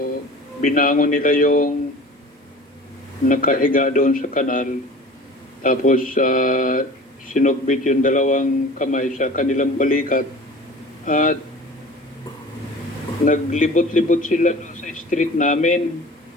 binangon nila yung nakahiga doon sa kanal. Tapos, sinugbit yung dalawang kamay sa kanilang balikat. At naglibot-libot sila doon sa street namin.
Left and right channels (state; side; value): normal; both; correlation 0.41